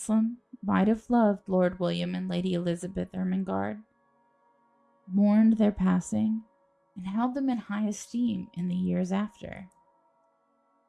might have loved Lord William and Lady Elizabeth Ermengarde, mourned their passing, and held them in high esteem in the years after.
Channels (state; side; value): identical; both; correlation 1.00